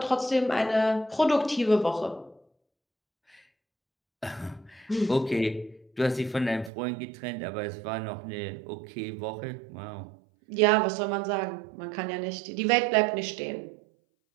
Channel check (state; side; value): drops out; left; at 6.7 s